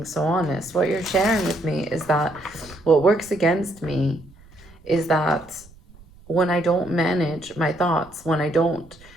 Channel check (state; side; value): noise; right; rumble, 24 dB below the sound